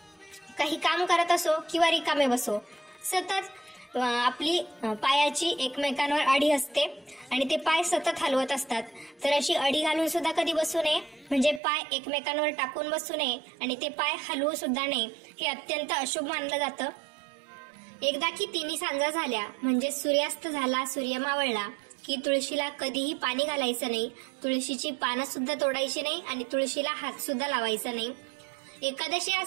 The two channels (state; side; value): drops out; left; at 11.6 s